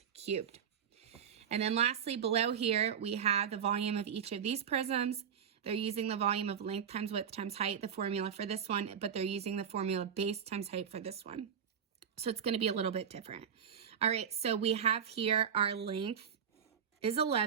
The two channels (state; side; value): quieter; left; 7.9 dB